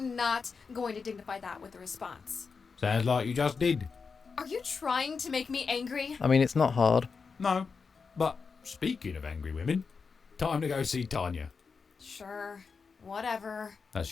not going to dignify that with a response. Sounds like you just did. Are you trying to make me angry? I mean, it's not hard. No, but speaking of angry women, time to go see Tanya. Sure, whatever. That's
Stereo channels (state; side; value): quieter; right; 5.2 dB